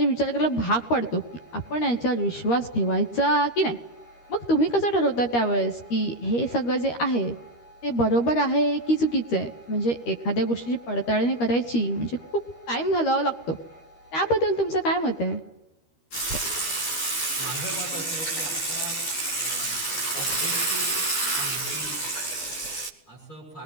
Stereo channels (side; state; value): right; late; 13 ms